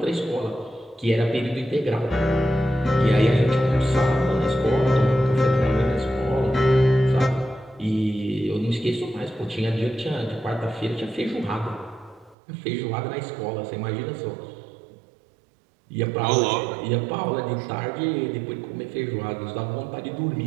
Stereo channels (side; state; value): left; drops out; at 12.4 s